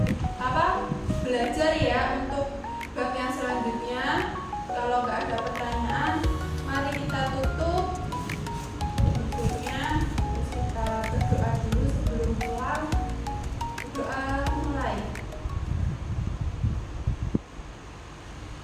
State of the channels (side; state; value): both; identical; correlation 1.00